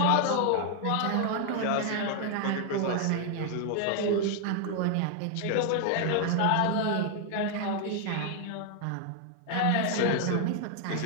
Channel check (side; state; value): both; different; correlation 0.00